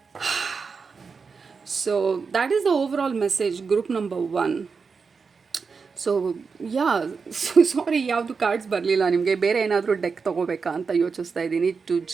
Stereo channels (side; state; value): left; quieter; 5.2 dB